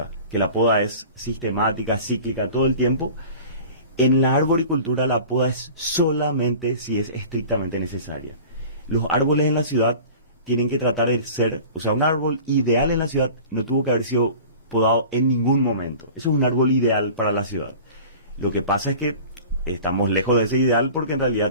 que la poda es sistemática, cíclica, todo el tiempo, en la arboricultura la poda es solamente si es estrictamente necesaria. Los árboles en la ciudad tienen que tratar de ser, o sea, un árbol ideal en la ciudad no tuvo que haber sido podado en ningún momento. Eso es un árbol ideal para la ciudad. Lo que pasa es que estamos lejos de ese ideal porque en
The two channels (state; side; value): inverted; both; correlation -0.41